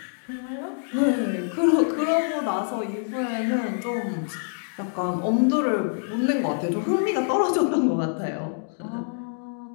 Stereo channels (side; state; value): right; silent; digital silence